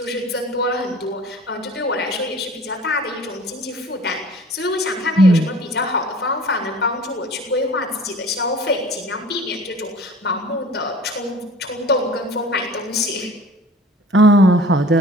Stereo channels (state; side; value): normal; both; correlation 0.46